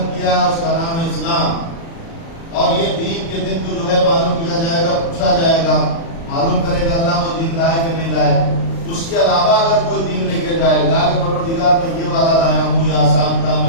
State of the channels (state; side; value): late; right; 36 ms